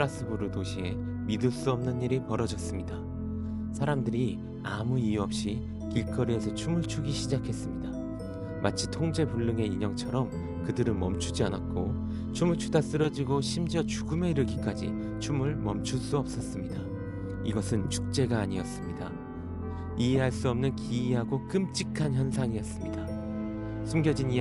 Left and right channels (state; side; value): identical; both; correlation 1.00